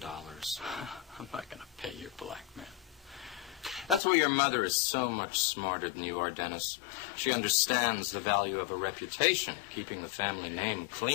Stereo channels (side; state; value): right; drops out; at 4.0 s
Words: I'm not going to pay your blackmail. That's why your mother is so much smarter than you are, Dennis. She understands the value of a reputation, keeping the family name